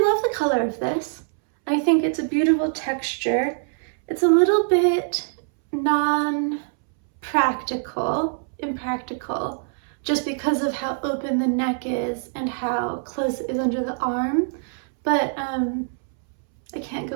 love the color of this. I think it's a beautiful texture. It's a little bit impractical, just because of how open the neck is and how close it is under the arm. But I can't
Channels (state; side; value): silent; left; 63 dB below the other